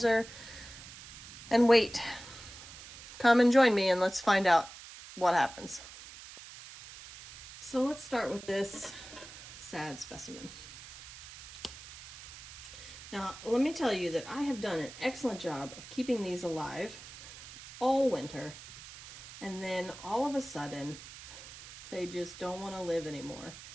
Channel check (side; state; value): right; noise; hiss, 15 dB below the sound